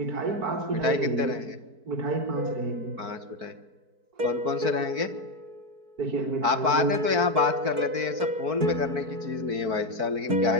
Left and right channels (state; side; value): late; left; 4.5 ms